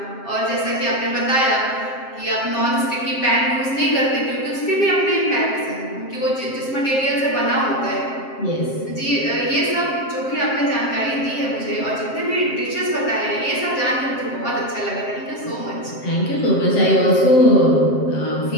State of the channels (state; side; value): late; right; 7.5 ms